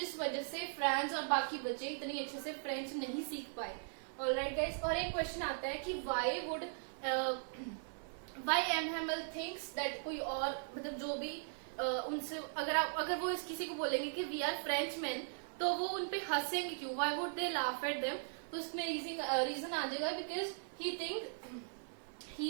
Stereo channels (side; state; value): left; silent; 52 dB below the other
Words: वजह से फ्रांस और बाकी बच्चे इतनी अच्छे से फ्रेंच नहीं सीख पाए. ऑलराइट गाइस, और एक क्वेश्चन आता है कि व्हाई एमएमएल थिंक्स दैट कोई और मतलब जो भी उनसे अगर वो किसी को बोलेंगे कि वी आर फ्रेंच मैन तो वो उनपे हंसेंगे क्यों, why would they laugh at them. तो इसमें रीजन आ जाएगा because